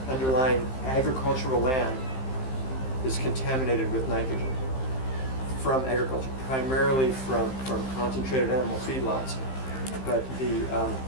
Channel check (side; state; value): right; late; 15 ms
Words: underlying agricultural land is contaminated with nitrogen from agriculture, primarily from concentrated animal feedlots. But the